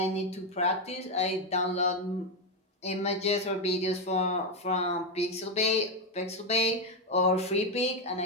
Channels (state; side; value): normal; both; correlation 0.07